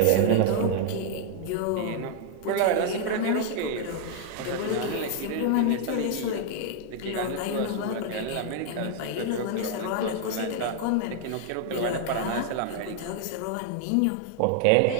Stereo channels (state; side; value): different; both; correlation 0.00